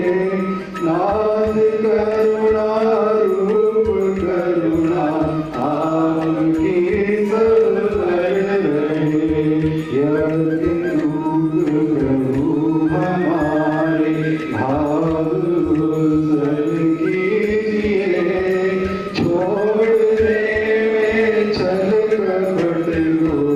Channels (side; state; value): both; identical; correlation 1.00